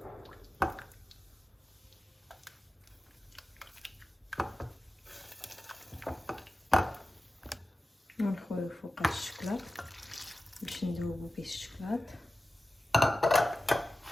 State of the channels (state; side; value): normal; both; correlation 0.94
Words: ونخويو فوق الشكلاط باش نذوبو به الشكلاط.